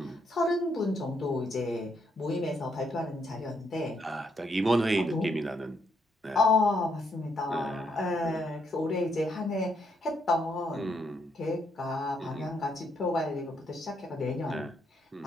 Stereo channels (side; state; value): both; normal; correlation 0.75